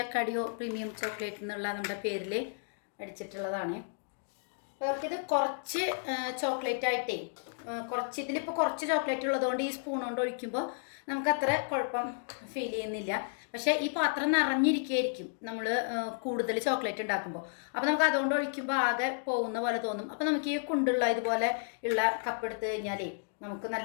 അക്കാഡിയോ പ്രീമിയം ചോക്ലേറ്റ് എന്നുള്ള നമ്മുടെ പേരിൽ അടിച്ചിട്ടുള്ളതാണ്. അവർക്കിത് കുറച്ച് ചോക്ലേറ്റ് ആയിട്ടേ ഇതിലിപ്പോൾ കുറച്ച് ചോക്ലേറ്റ് ഉള്ളതുകൊണ്ട് ഈ സ്പൂൺ കൊണ്ട് ഒഴിക്കുമ്പോൾ നമുക്കത്ര കുഴപ്പം ഫീൽ ചെയ്യുന്നില്ല. പക്ഷേ ഈ പാത്രം നിറഞ്ഞിരിക്കുകയായിരിക്കും നമ്മൾ കൂടുതൽ ചോക്ലേറ്റ് ഉണ്ടാക്കുമ്പോൾ. അപ്പോൾ നമുക്ക് അതുകൊണ്ട് ഒഴിക്കുമ്പോൾ ആകെ പോകുന്ന പോലെ തോന്നും. അപ്പോൾ നമുക്ക് ഈ കുണ്ടുള്ള ഇതുപോലെ ഉള്ള കപ്പ് എടുത്ത് കഴിഞ്ഞാലേ നമുക്ക്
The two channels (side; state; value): right; silent; digital silence